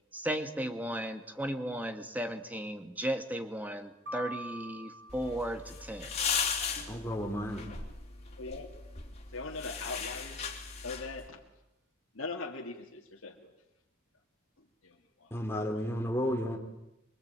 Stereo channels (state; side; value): normal; both; correlation 0.50